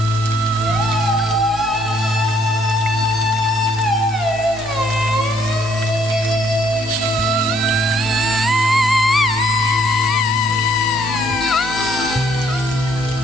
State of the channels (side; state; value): both; normal; correlation 0.66